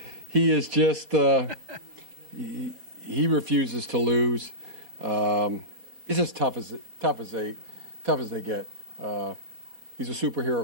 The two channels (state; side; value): late; left; 4.2 ms